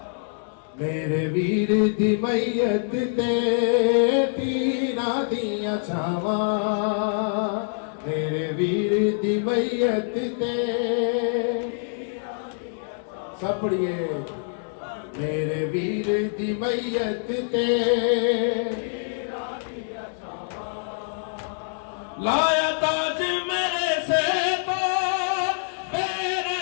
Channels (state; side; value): silent; right; digital silence